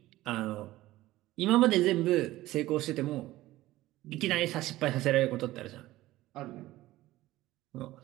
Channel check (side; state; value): left; quieter; 16.6 dB